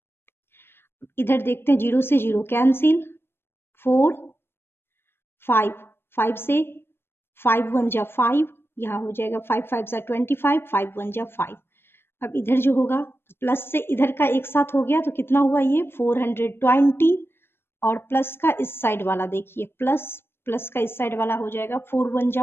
इधर देखते हैं 0 से 0 कैंसिल, 4 5 5 से 5 1 जा 5, यहाँ हो जाएगा 5 5 जा 25, 5 1 जा 5। अब इधर जो होगा प्लस से इधर का एक साथ हो गया तो कितना हुआ, ये 420, और प्लस का इस साइड वाला देखिए, प्लस का इस साइड वाला हो जाएगा 4 1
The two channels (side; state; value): right; late; 0.11 ms